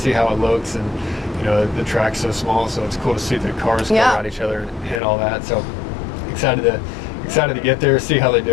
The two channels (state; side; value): drops out; right; at 5.0 s